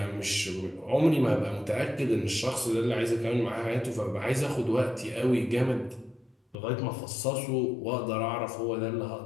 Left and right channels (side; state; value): right; drops out; at 6.6 s